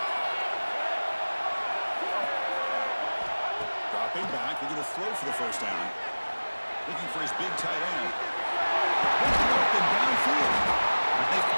Dropping back, looking to throw for the first down. Looking for his big tight end. Looking open downfield. They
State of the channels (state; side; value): inverted; both; correlation -1.00